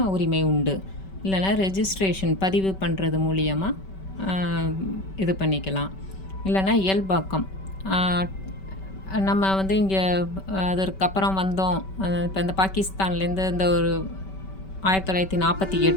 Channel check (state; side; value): late; right; 5.2 ms